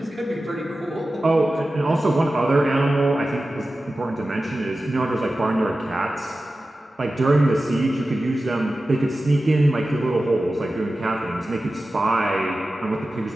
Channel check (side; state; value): both; normal; correlation 0.94